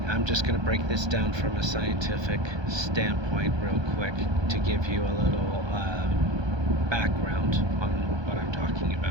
I'm just going to break this down from a scientific standpoint real quick to give you a little background on what I'm talking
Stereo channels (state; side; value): late; left; 1.2 ms